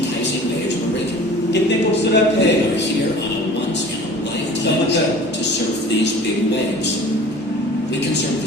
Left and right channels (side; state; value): both; normal; correlation 0.44